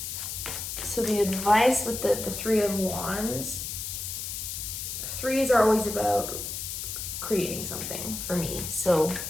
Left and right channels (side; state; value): left; noise; hiss, 5 dB below the sound